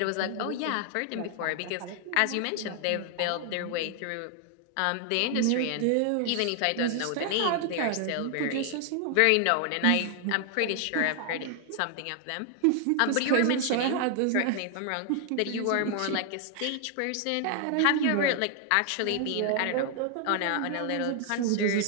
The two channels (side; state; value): both; different; correlation 0.00